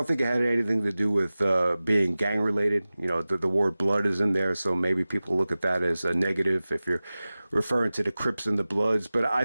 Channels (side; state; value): both; inverted; correlation -0.97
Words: think it had anything to do with being gang related. The word blood is in there, so maybe people look at that as a negative if you're referring to the Crips and the Bloods. But